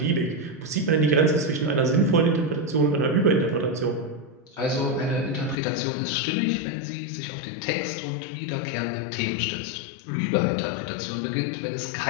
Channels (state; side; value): drops out; right; at 5.6 s